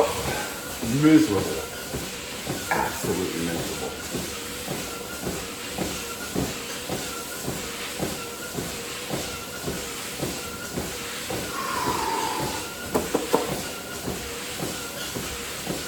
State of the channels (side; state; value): both; identical; correlation 1.00